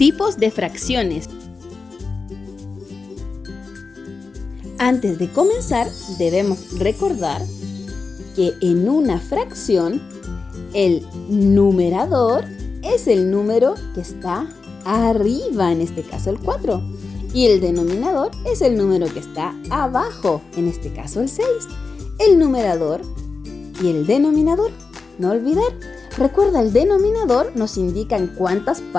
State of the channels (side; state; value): right; quieter; 4.4 dB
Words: de fracciones. Antes de comenzar, debemos recordar que en una fracción, el numerador es el número que está arriba, en este caso el 4, y el denominador es el número que está abajo, en este caso el 6. El numerador y el denominador, no olvidar. Recuerda, el denominador nos indica en cuántas